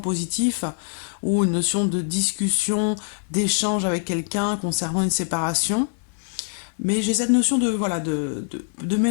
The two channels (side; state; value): right; silent; digital silence